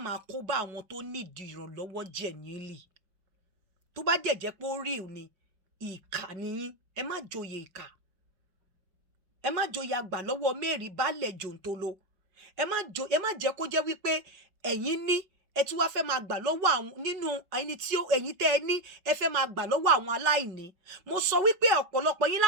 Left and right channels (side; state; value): left; late; 5.3 ms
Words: máa kó bá àwọn tó nídìí ìrànlọ́wọ́ genuinely tó bá jẹ́ pé ó real ni ìkà nìyín ẹ má joyè ìkà ẹ má joyè àgbà lọ́wọ́ mẹ́rin baálẹ̀ jòǹtolo ẹ má jẹ́ kó jẹ́ wípé ẹ̀yin ní ẹ tún wá fẹ́ máa gbà lọ́wọ́ àwọn nínú ẹni tí ẹ̀yin tẹ́ ẹ ní ẹ fẹ́ máa gbà lọ́wọ́ àwọn aláìní mo sọ wípé ọ̀pọ̀lọpọ̀ yín